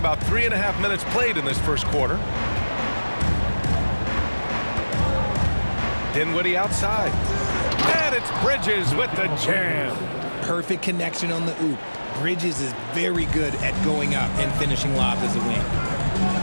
3.5 minutes played in this first quarter. Dinwiddie outside. And it's Bridges with the jam. Perfect connection on the oop. Bridges is very good at going up and finishing lobs as a wing.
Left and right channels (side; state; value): both; inverted; correlation -1.00